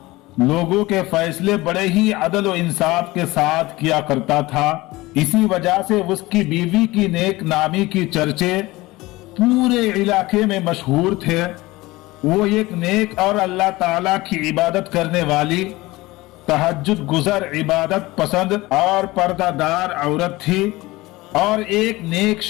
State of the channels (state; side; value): quieter; right; 20.0 dB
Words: लोगों के फैसले बड़े ही अदल और इंसाफ के साथ किया करता था। इसी वजह से उसकी बीवी की नेक नामी की चर्चे पूरे इलाके में मशहूर थे। वो एक नेक और अल्लाह ताला की इबादत करने वाली, तहज्जुद गुज़र, इबादत पसंद और पर्दादार औरत थी और एक नेक